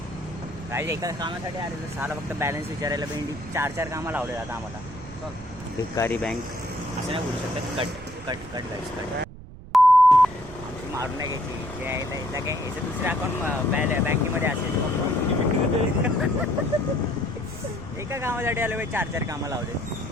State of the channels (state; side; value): noise; right; rumble, 16 dB below the sound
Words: काही एका कामासाठी आलेलं साला फक्त बॅलन्स विचारायला भेंडी 4 कामं लावले आता आम्हाला. भिकारी बँक असं नाही बोलू शकत. कट कट आमची मारून नाही घ्यायची. जे आहे एकदा काय याचं दुसरं अकाउंट बँकेमध्ये असेल. एका कामासाठी आलं भाई 4 कामं लावले.